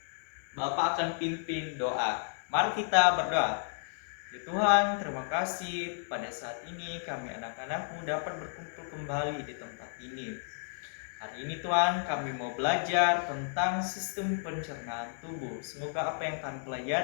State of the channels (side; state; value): right; silent; 56 dB below the other